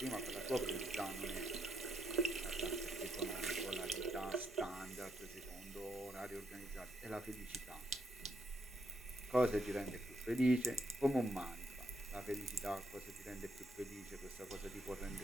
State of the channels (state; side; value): normal; both; correlation 0.77